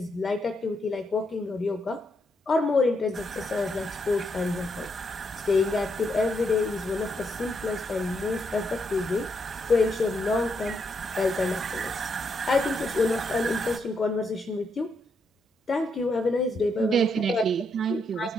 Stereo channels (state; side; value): normal; both; correlation 0.79